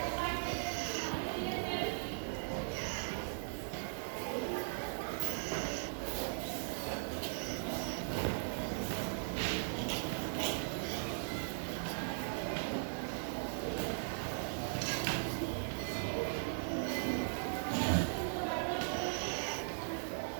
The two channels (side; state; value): left; silent; digital silence